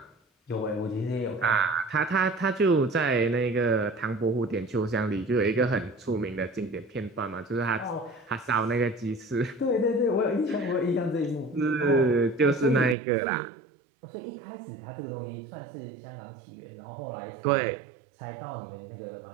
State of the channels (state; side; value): drops out; left; at 13.0 s